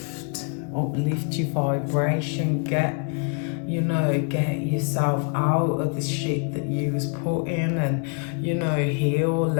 your vibration, get you know, get yourself out of the shit that you was put in, and, you know, heal,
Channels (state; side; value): quieter; right; 38.3 dB